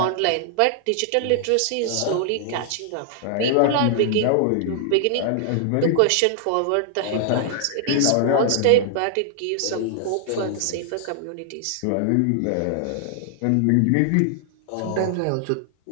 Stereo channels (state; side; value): different; both; correlation 0.00